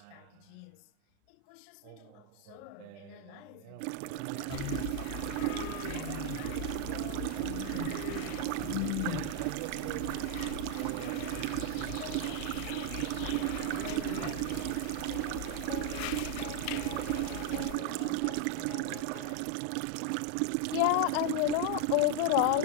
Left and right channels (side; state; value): both; different; correlation 0.00